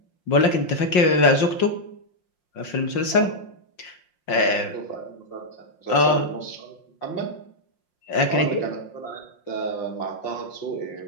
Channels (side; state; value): right; late; 5.6 ms